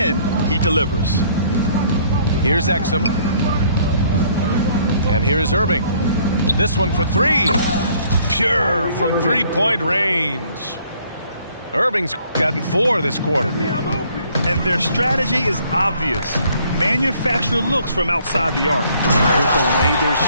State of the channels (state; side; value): inverted; both; correlation -0.61